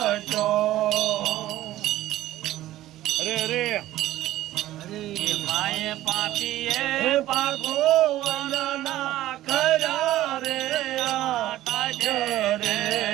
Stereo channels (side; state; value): left; quieter; 14.7 dB